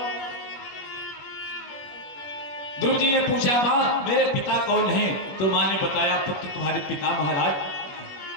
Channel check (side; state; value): right; late; 21 ms